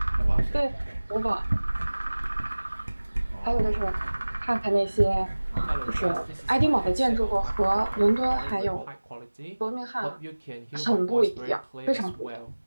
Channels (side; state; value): both; inverted; correlation -1.00